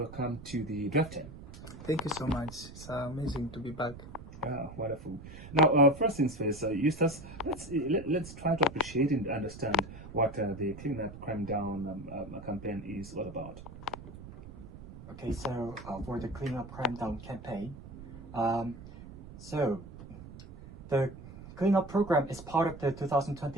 to the Dept. Thank you so much. It's amazing to be back. Wonderful. Now, first things first, Eustace, let's try to appreciate and understand what the Clean Up Crime Down campaign is all about. Okay, so for the Clean Up Crime Down campaign, so the Clean Up program is part of the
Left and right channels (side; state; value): right; noise; rumble, 14 dB below the sound